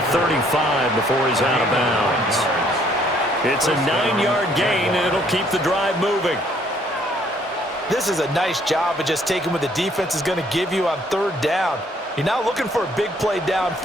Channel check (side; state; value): both; normal; correlation 0.64